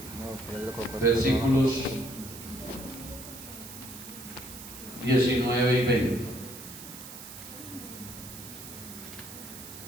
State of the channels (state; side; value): noise; right; hiss, 13 dB below the sound